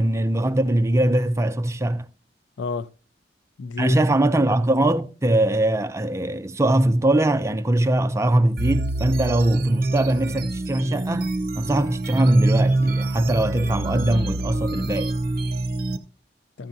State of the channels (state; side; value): normal; both; correlation 0.86